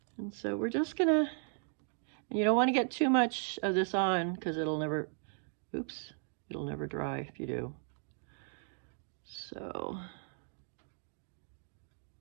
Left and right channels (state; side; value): silent; left; 54 dB below the other